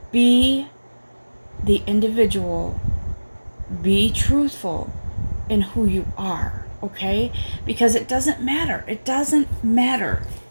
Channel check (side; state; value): both; inverted; correlation -1.00